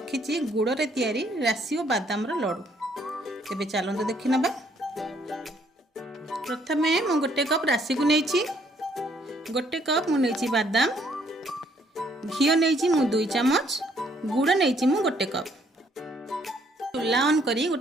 गुड़े तैयारी राशि और बादाम लडू। तेबे चलते देखि नबा। प्रथमे मु गोटे कप राशि को नहीं, गोटे कप मु नहीं बादाम, घी नहीं मु 2 चम्मच, गुड़ नहीं मु गोटे कप। चूल्हा ऑन करी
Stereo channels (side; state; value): both; normal; correlation 0.67